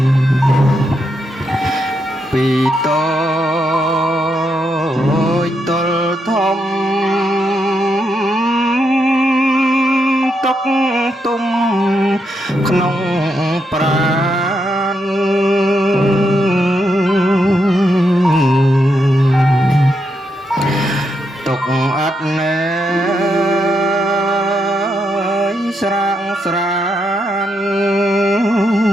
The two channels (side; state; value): both; normal; correlation 0.81